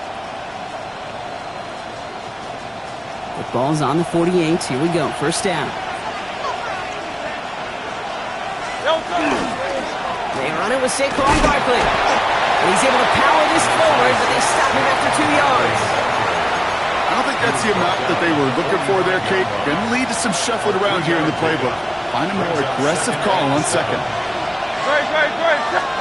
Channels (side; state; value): both; identical; correlation 1.00